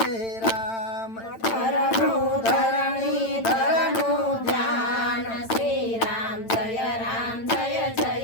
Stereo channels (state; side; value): late; right; 8.9 ms